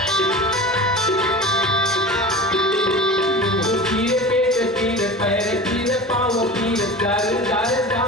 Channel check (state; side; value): normal; both; correlation 0.34